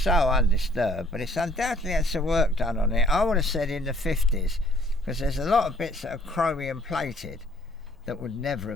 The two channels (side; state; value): both; normal; correlation 0.60